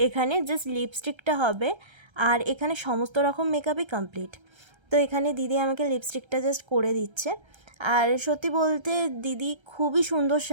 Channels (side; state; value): left; late; 1.3 ms